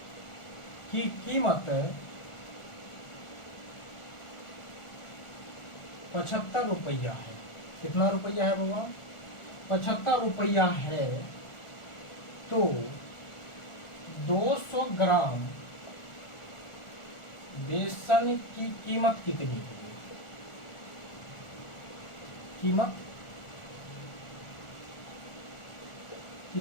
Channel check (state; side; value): late; right; 1.4 ms